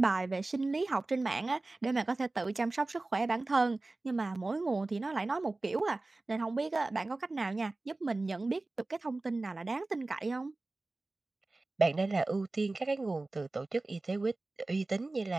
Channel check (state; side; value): quieter; left; 3.1 dB